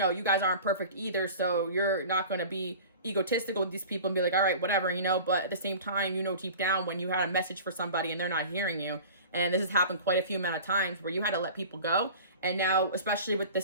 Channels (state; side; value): inverted; both; correlation -0.40